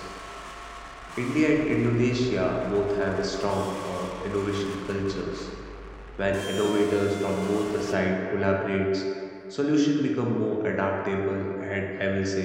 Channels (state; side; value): identical; both; correlation 1.00